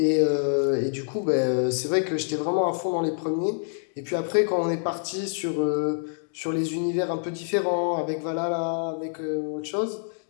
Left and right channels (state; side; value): silent; right; digital silence